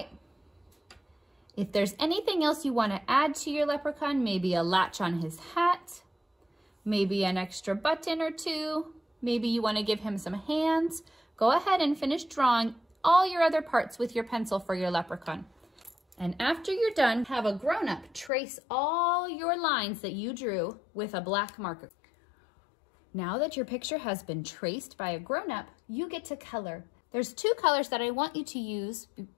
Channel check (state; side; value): drops out; right; at 18.3 s